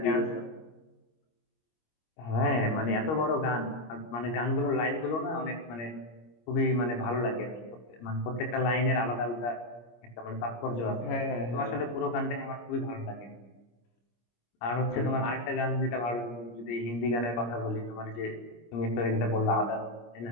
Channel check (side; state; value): right; late; 25 ms